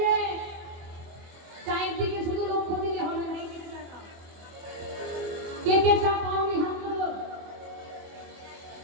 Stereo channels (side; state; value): left; late; 24 ms